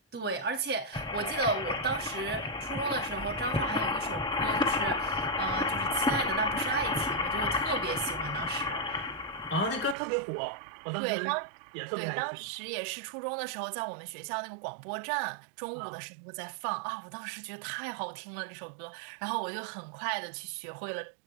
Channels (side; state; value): left; drops out; at 10.0 s